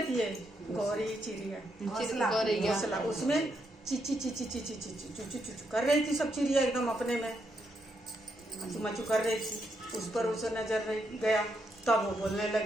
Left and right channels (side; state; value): both; normal; correlation 0.80